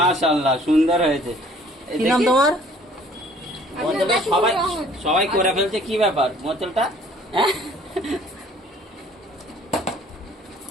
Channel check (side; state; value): both; normal; correlation 0.55